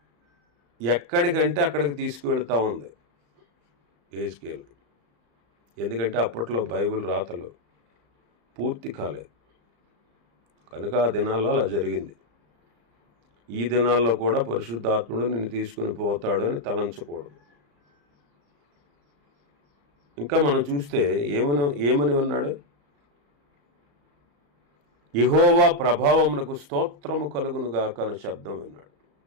ఎక్కడికంటే అక్కడికి తీసుకువెళ్తా ఉంది యెహెజ్కేలు. ఎందుకంటే అప్పట్లో బైబిల్ రాతలు పూర్తి కాలేదు కనుక ఆ దినాల్లో అలా జరిగింది. ఈ దినాల్లో కూడా పరిశుద్ధాత్ముడు నిన్ను తీసుకుని పోతాడు అని తలంచకూడదు. ఇంకా మనం చూస్తే ఏమని ఉన్నాడు? యెహోవా ప్రభావమునకు స్తోత్రము కలుగునుగాక అనే శబ్దం విన్నాడు.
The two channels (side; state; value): left; late; 35 ms